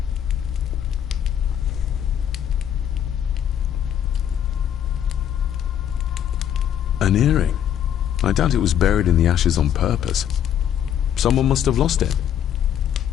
An earring. I doubt it was buried in the ashes on purpose. Someone must have lost it.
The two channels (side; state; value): right; quieter; 9.8 dB